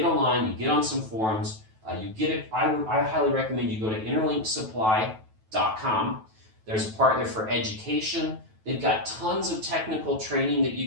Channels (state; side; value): late; left; 9.2 ms